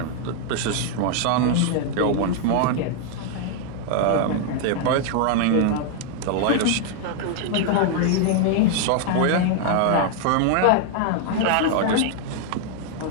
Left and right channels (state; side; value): different; both; correlation 0.00